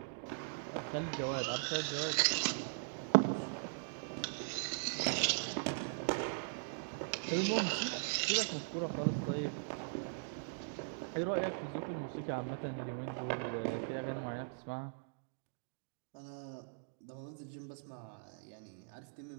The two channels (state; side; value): silent; left; digital silence